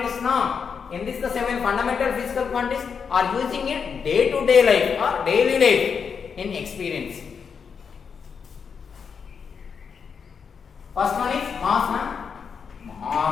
now. In this the 7 fundamental physical quantities are using in day to day life or daily life in experience. First one is mass,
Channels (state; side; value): quieter; right; 6.3 dB